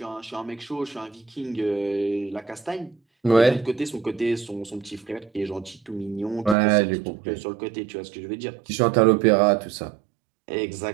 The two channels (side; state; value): left; drops out; at 6.6 s